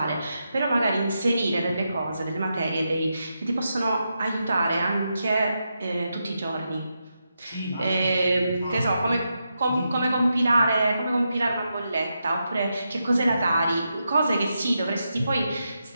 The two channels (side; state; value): both; inverted; correlation -0.86